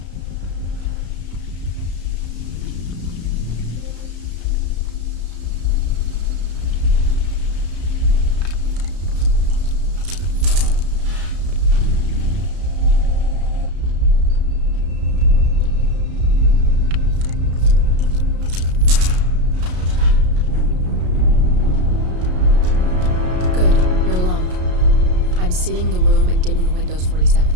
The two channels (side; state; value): left; late; 33 ms